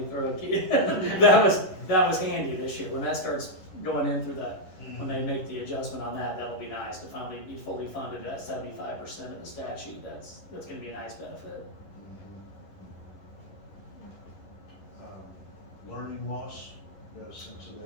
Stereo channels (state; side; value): late; right; 11 ms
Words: throw a key, that was handy this year. When that starts going in through that, when they make the adjustment on that, that'll be nice to finally be fully funded at 75% of the statute. That's gonna be a nice benefit. Learning loss, got a sense of